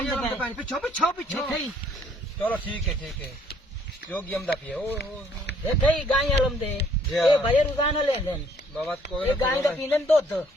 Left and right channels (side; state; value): both; normal; correlation 0.63